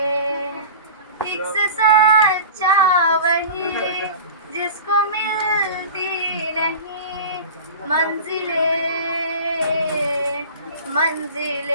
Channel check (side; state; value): both; inverted; correlation -0.36